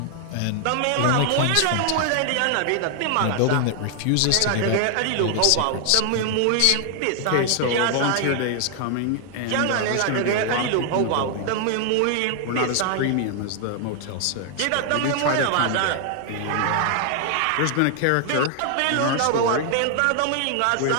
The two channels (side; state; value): both; different; correlation 0.00